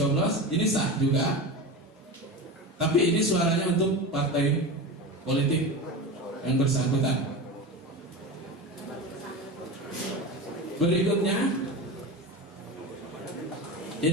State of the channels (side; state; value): both; normal; correlation 0.25